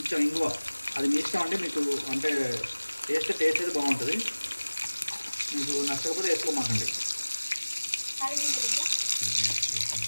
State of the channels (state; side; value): inverted; both; correlation -1.00